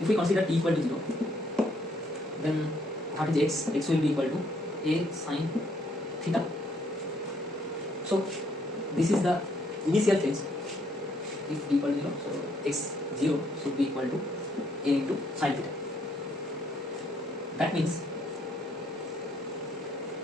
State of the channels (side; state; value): both; normal; correlation 0.69